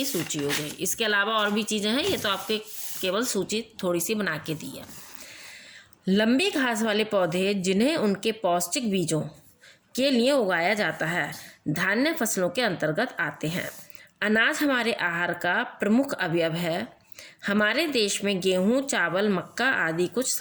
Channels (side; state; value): both; identical; correlation 1.00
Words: सूची हो गई। इसके अलावा और भी चीज़ें हैं, ये तो आपके केवल सूची थोड़ी सी बना के दी है। लंबी घास वाले पौधे जिन्हें उनके पौष्टिक बीजों के लिए उगाया जाता है धान्य फसलों के अंतर्गत आते हैं। अनाज हमारे आहार का प्रमुख अवयव है। हमारे देश में गेहूं, चावल, मक्का आदि कुछ